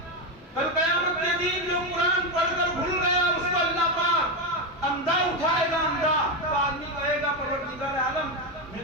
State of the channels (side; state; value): both; normal; correlation 0.10